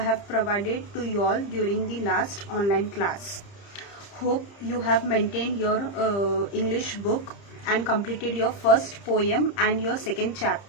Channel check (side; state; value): right; late; 30 ms